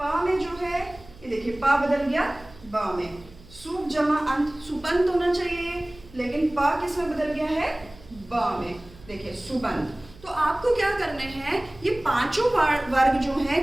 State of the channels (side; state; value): right; noise; hum, 22 dB below the sound